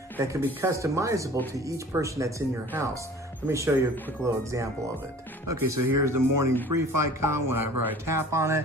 that can be customizable to each person that's in your house. Let me show you a quick little example of it. Okay, so here's the morning brief icon whenever I tap on it.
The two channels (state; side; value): normal; both; correlation 0.46